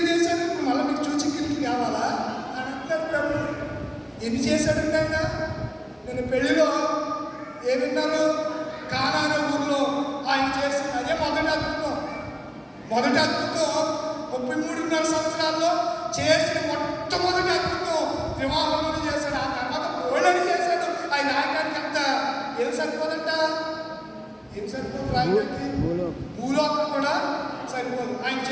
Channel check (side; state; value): both; identical; correlation 1.00